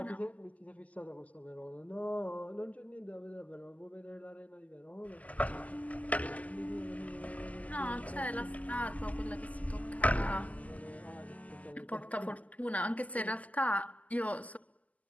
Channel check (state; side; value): late; right; 0.074 ms